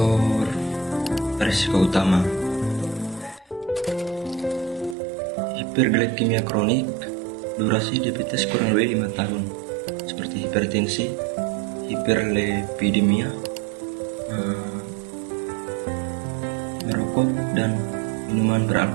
risiko utama. Hiperglikemia kronik, durasi diabetes kurang lebih 5 tahun, seperti hipertensi, hiperlipidemia, merokok, dan minuman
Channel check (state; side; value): drops out; left; at 5.0 s